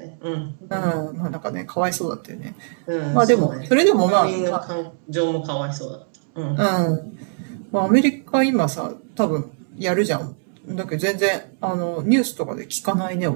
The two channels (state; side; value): silent; left; digital silence